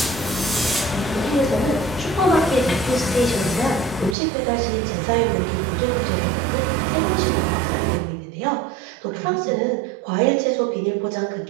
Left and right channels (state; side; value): drops out; left; at 4.2 s